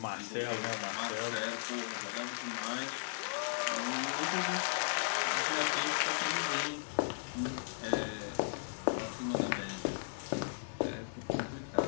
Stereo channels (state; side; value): silent; right; 54 dB below the other